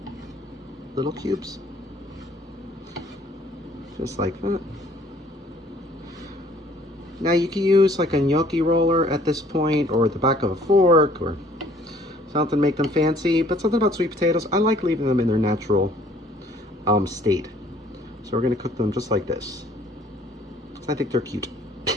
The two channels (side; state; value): both; normal; correlation 0.58